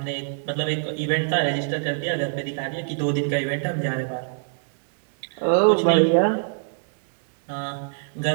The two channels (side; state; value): left; silent; digital silence